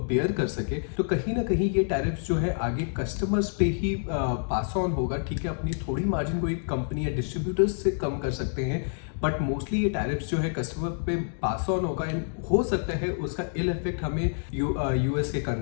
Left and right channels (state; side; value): silent; right; digital silence